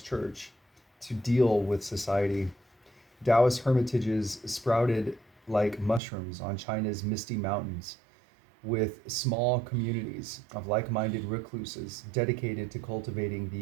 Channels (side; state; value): left; drops out; at 6.0 s